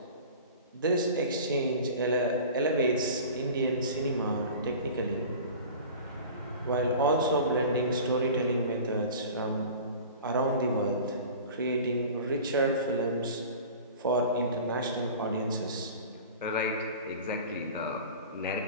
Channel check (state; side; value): inverted; both; correlation -0.39